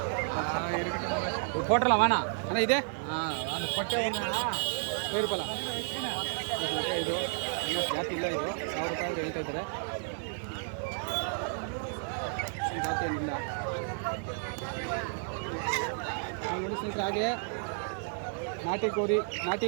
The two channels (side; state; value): left; silent; 57 dB below the other